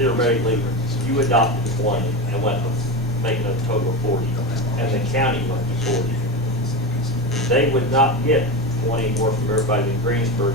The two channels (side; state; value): both; normal; correlation 0.20